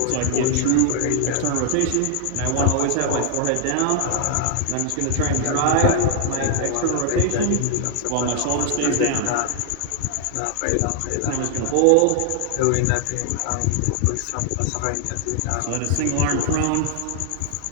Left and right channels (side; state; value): both; different; correlation 0.00